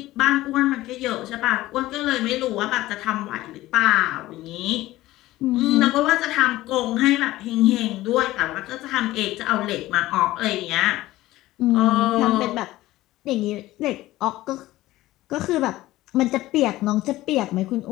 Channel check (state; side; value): quieter; right; 16.8 dB